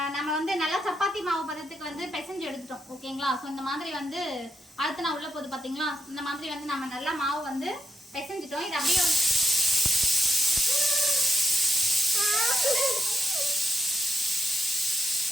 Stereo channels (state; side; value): normal; both; correlation 0.80